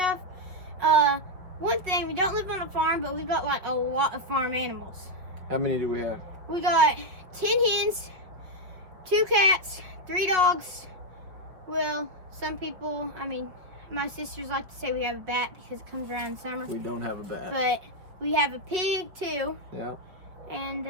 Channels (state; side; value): late; left; 5.5 ms